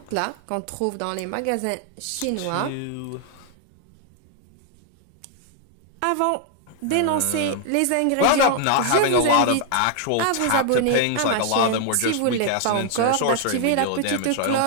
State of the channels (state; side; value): different; both; correlation 0.00